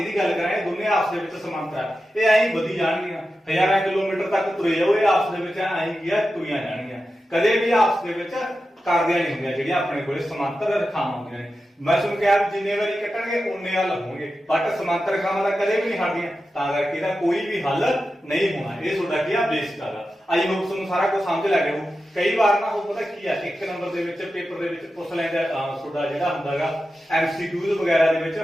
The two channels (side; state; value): both; normal; correlation 0.91